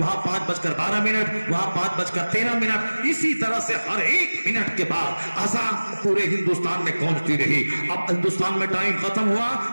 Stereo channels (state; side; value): inverted; both; correlation -1.00